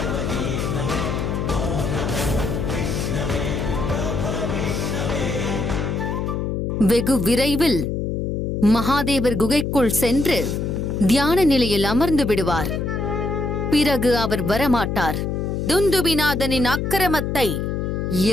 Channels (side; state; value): left; noise; hum, 1 dB below the sound